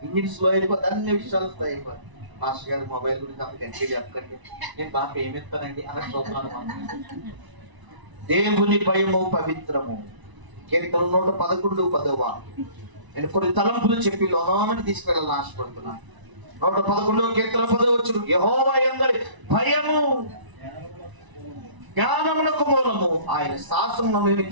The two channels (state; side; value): late; left; 1.0 ms